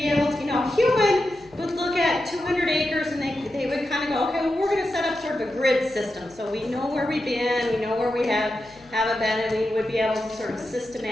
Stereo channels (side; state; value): left; noise; hum, 26 dB below the sound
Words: able to, human would look at 200 acres and they would kind of go, okay, well, we're going to set up sort of a grid system. So we know where we've been, we know where we haven't been, and we would be able to sort of